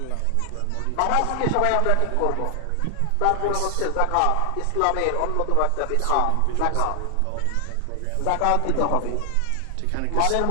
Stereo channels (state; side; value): different; both; correlation 0.00